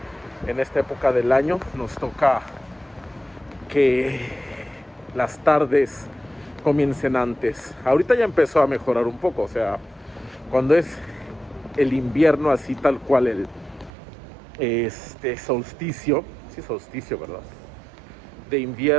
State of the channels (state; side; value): drops out; left; at 13.9 s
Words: en esta época del año nos toca que las tardes comiencen antes. Ahorita ya empezó a mejorar un poco, o sea, cuando es el invierno así tal cual, el solsticio, sí, solsticio, ¿verdad? De